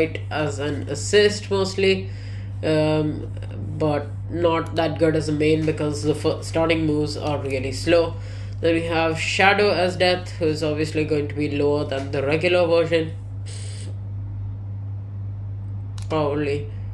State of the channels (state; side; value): identical; both; correlation 1.00